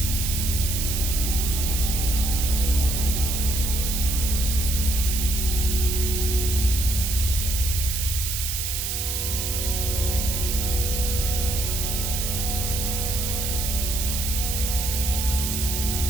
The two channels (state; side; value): noise; right; hiss, 2 dB below the sound